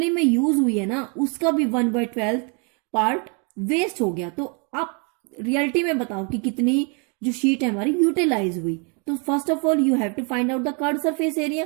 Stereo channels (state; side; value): quieter; left; 35.7 dB